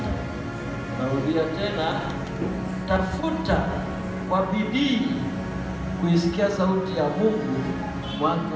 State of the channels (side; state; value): both; identical; correlation 1.00